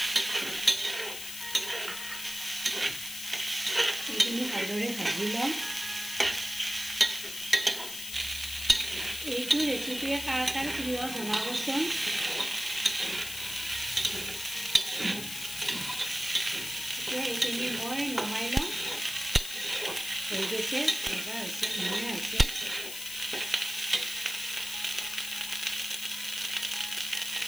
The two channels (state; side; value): noise; left; hiss, 8 dB below the sound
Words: এইখিনি ভালদৰে ভাজি ল'ম। এইটো ৰেচিপিয়ে কাৰ কাৰ প্ৰিয় জনাবচোন। এতিয়া এইখিনি মই নমাই ল'ম। হৈ গৈছে, ভজা হৈছে, ধুনীয়া হৈছে।